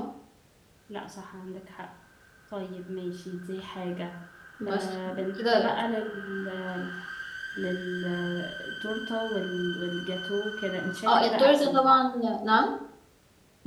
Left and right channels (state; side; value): identical; both; correlation 1.00